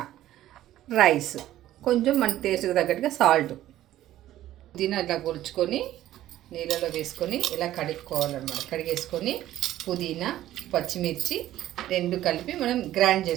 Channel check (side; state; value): left; quieter; 13.7 dB